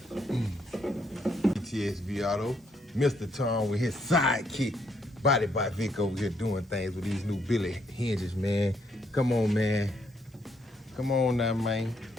VTSV Auto, Mr. Tom with his sidekick, Body by Vic over here doing things with these new Billy hinges, man. Come on, man. Come on now, man.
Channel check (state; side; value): normal; both; correlation 0.73